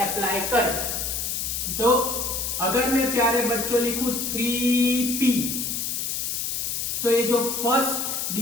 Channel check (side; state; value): left; noise; hiss, 2 dB below the sound